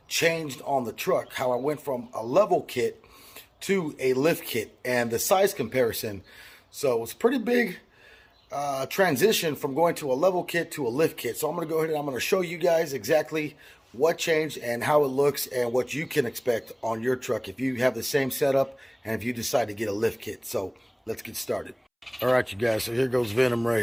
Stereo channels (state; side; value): identical; both; correlation 1.00